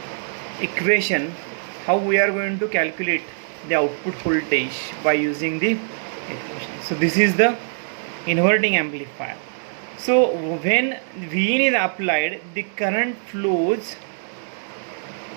equation, how we are going to calculate the output voltage by using the equation. So this is the inverting amplifier. So when Vin is applied, the current flows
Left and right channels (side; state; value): left; silent; digital silence